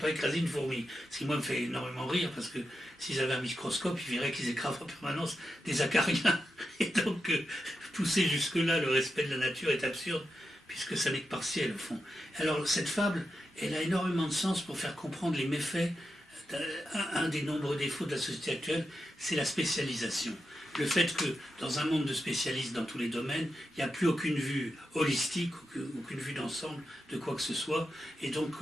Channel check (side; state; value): both; normal; correlation 0.88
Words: écraser une fourmi. Ce qui, moi, me fait énormément rire, parce que s'ils avaient un microscope, ils verraient qu'ils écrasent en permanence des acariens. Et donc, pousser jusque-là, le respect de la nature est absurde, puisque ça n'est que partiel, au fond. Alors, cette fable, elle a énormément de sens pour faire comprendre les méfaits. Un des nombreux défauts de la société actuelle, c'est la spécialisation. Le fait que dans un monde de spécialistes dans tous les domaines, il n'y a plus aucune vue holistique, aucune vue d'ensemble de quoi que ce soit, et donc